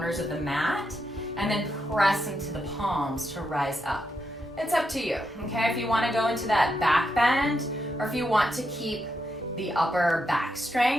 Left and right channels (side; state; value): both; normal; correlation 0.82